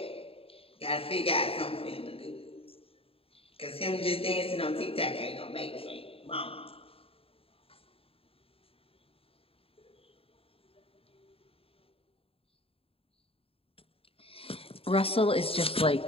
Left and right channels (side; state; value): right; late; 0.27 ms